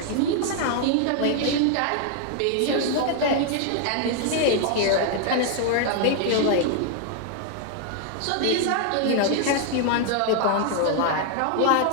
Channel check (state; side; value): different; both; correlation 0.00